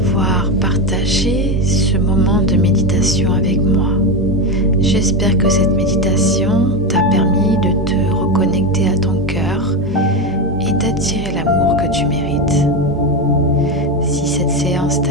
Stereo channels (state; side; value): normal; both; correlation 0.14